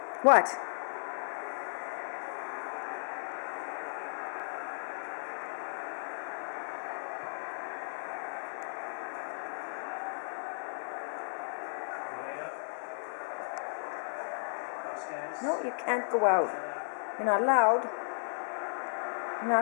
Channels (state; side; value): silent; right; digital silence